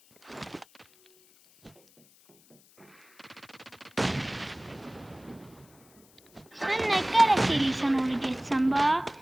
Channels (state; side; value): noise; left; hiss, 29 dB below the sound